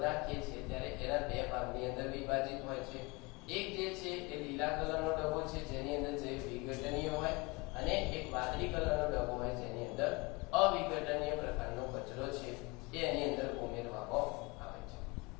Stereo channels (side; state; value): right; quieter; 26.2 dB